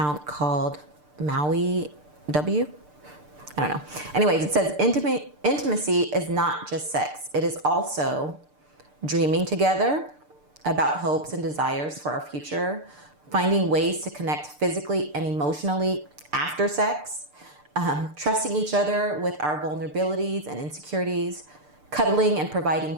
called Maui W. I don't know. Anyways, it says intimacy is not just sex. It is also dreaming together about hopes and desires for our future, finding ways to connect physically and emotionally after sex, trusting each other with our vulnerabilities and insecurities, cuddling and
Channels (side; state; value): left; late; 6.7 ms